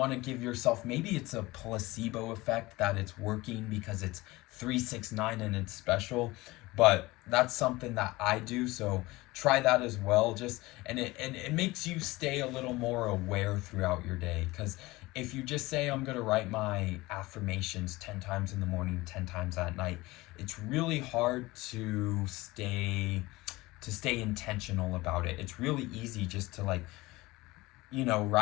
to give yourself, maybe it's a placebo effect that it's working because it's 369 and it's special, but that's something that I do. So try that as well. And it makes you stay a little more aware throughout your day, because if you just say, I'm going to write my affirmations 10 times in the morning, 10 times at night, it's really hard to stay intentional about it. It's really easy just to like,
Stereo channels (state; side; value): quieter; right; 20.5 dB